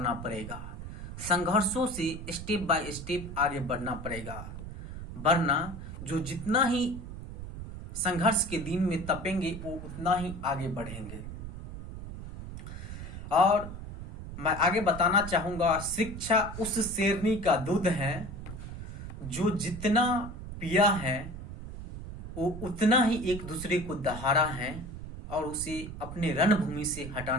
पड़ेगा। संघर्षों से स्टेप बाय स्टेप आगे बढ़ना पड़ेगा, वरना जो जितना ही संघर्ष के दिन में तपेंगे वो उतना ही आगे बढ़ेंगे। और मैं आगे बताना चाहूँगा, शिक्षा उस शेरनी का दूध है जो जितना पिया है वो उतना ही एक दूसरे को दहाड़ा है और उसे अपने रणभूमि से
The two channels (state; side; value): noise; right; rumble, 10 dB below the sound